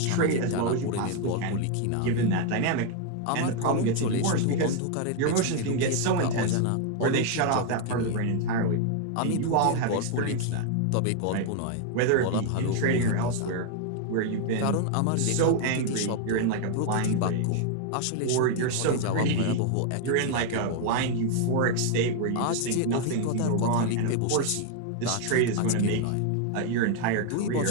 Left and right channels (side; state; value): both; different; correlation 0.00